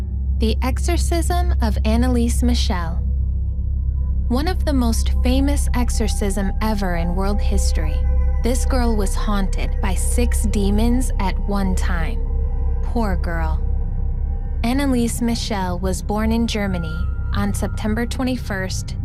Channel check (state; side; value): identical; both; correlation 1.00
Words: The Exorcism of Anneliese Michel. One of the most famous exorcism ever in world history, this girl was haunted by 6 demons at one time. Poor girl. Anneliese Michel was born in Germany on September 21st,